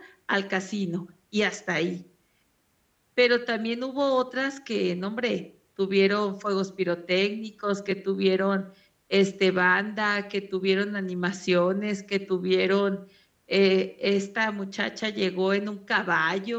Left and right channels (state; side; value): identical; both; correlation 1.00